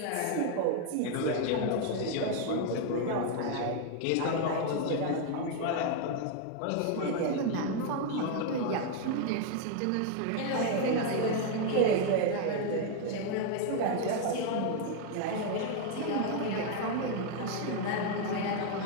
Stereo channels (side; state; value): both; different; correlation 0.00